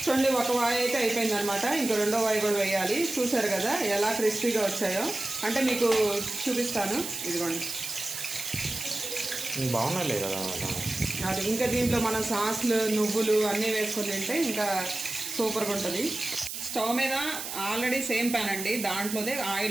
చూడండి, ఒక వాయి అయితే అయిపోయింది అనమాట. ఇంకా రెండో వాయి కూడా వేయాలి. చూసారు కదా ఎలా క్రిస్పీగా వచ్చాయో. అంటే మీకు చూపిస్తాను. ఇదిగోండి, బాగున్నాయి కదా. అది ఇంకా దీంట్లో మనం సాస్లు నువ్వులు అన్నీ వేసుకొని తింటే ఇంకా సూపర్గా ఉంటుంది. స్టవ్ మీద ఆల్రెడీ సేమ్ ప్యాన్ అండి, దాంట్లోనే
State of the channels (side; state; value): right; noise; hiss, 6 dB below the sound